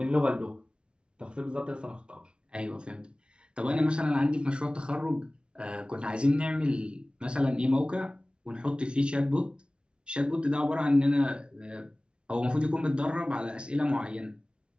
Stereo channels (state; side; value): late; left; 0.057 ms